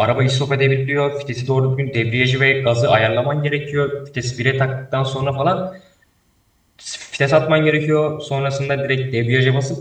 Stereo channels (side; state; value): both; identical; correlation 1.00